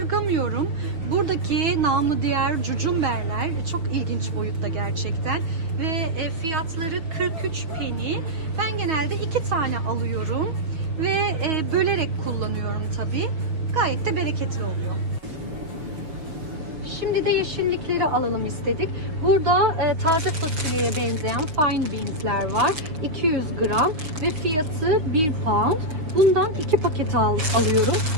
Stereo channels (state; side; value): late; left; 6.2 ms